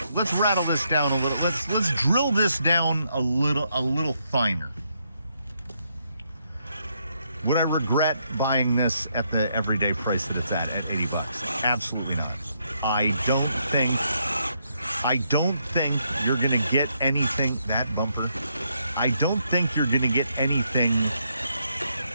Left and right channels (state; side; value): inverted; both; correlation -0.76